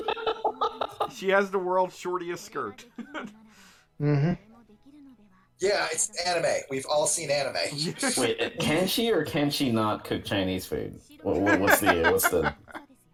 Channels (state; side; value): identical; both; correlation 1.00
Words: She has the world's shortest skirt. Mm-hmm. Yeah, it's anime. We've all seen anime. Wait, can she or can she not cook Chinese food? What's the?